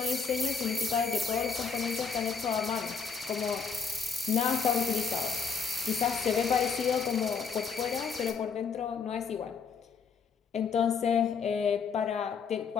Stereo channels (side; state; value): right; quieter; 5.7 dB